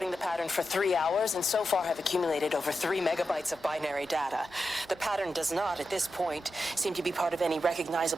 the pattern for 3 hours, and so far have accumulated over 3 megabytes of binary data. The pattern does not, at this point, seem to be part of any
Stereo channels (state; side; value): normal; both; correlation 0.89